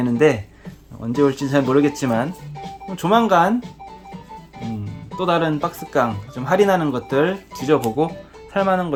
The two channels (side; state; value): both; identical; correlation 1.00